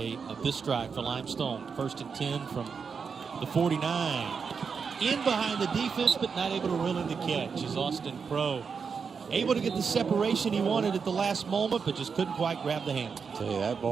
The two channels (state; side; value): quieter; left; 5.8 dB